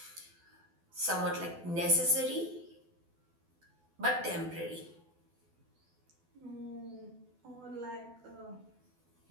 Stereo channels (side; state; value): left; late; 12 ms